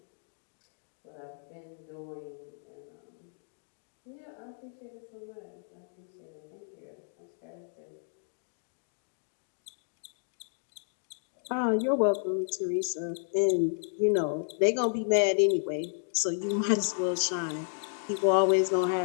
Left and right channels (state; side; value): silent; right; digital silence